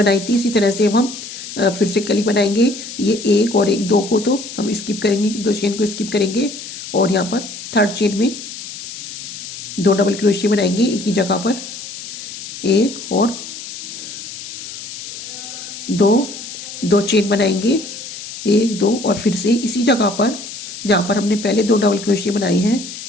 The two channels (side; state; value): left; noise; hiss, 11 dB below the sound